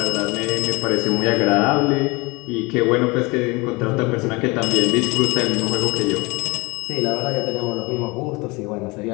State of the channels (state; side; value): quieter; right; 25.8 dB